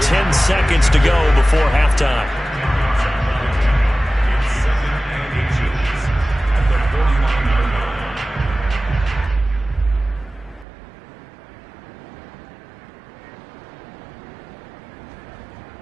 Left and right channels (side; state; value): left; drops out; at 10.7 s